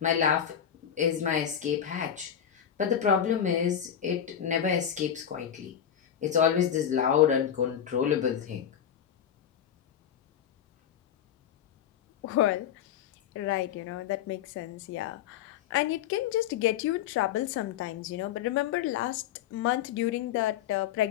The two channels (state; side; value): quieter; right; 9.2 dB